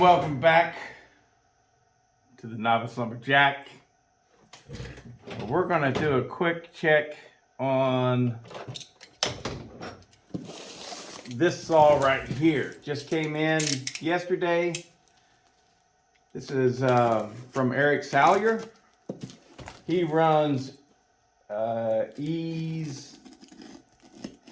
back to the Novice Lumberjack. We're going to do a quick check on this saw right here. Just came in yesterday. This is from Eric Salyer. He runs Ease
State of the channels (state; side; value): identical; both; correlation 1.00